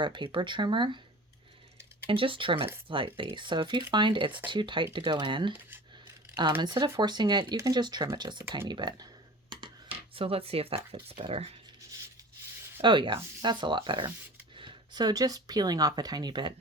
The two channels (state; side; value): normal; both; correlation 0.39